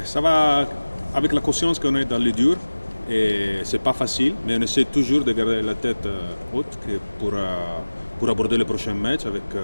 Ça va avec la conscience qu'on est dans les durs et c'est pas facile, mais on essaie toujours de garder la tête haute pour aborder le prochain match avec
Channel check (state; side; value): inverted; both; correlation -1.00